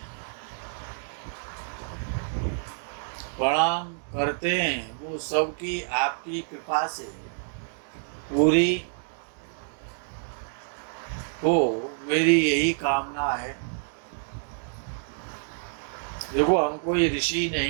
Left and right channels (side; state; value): left; silent; digital silence